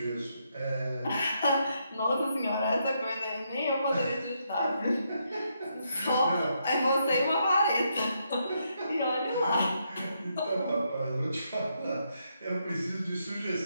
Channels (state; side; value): inverted; both; correlation -0.78